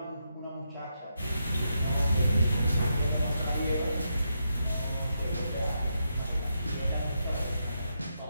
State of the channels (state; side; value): inverted; both; correlation -0.82